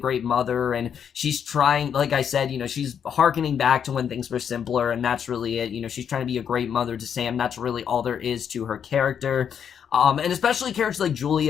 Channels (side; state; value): right; quieter; 8.0 dB